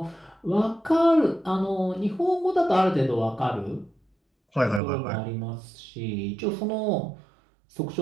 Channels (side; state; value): left; drops out; at 4.8 s